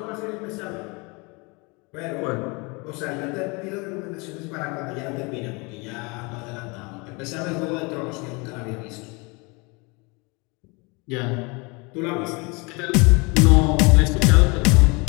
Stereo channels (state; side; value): quieter; right; 28.6 dB